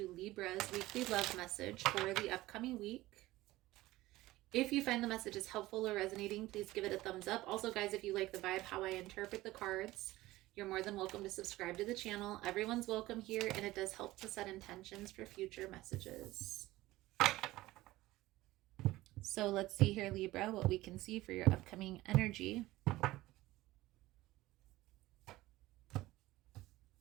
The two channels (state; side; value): quieter; left; 17.7 dB